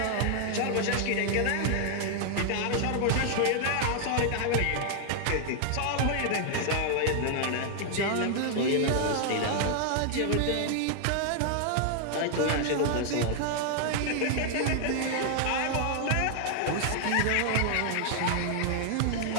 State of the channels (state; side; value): different; both; correlation 0.00